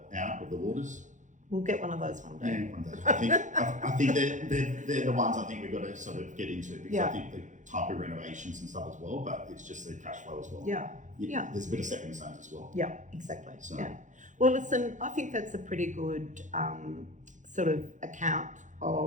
out with the waters? We'll get one of those one day. Yeah, one day. I think they're the ones I think we've got to sort of get into, because I think the type of renovations and stuff as well, but it's just the cash flow as well. Yeah. There's a bit of stepping stones as well. Yeah, exactly. So. Yeah. Well, listen, I think that's a pretty good sort of account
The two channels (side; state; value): left; late; 0.36 ms